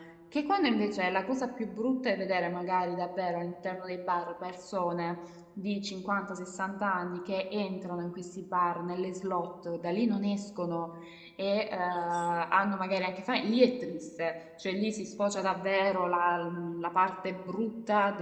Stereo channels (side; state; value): both; identical; correlation 1.00